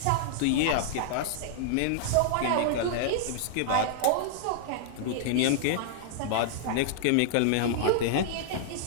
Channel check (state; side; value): different; both; correlation -0.01